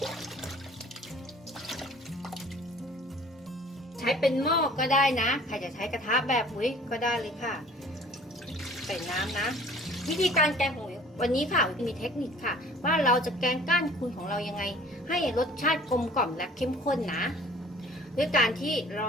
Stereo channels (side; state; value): both; normal; correlation 0.50